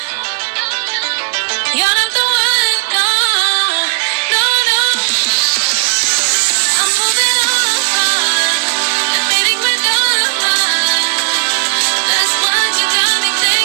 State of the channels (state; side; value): quieter; left; 33.9 dB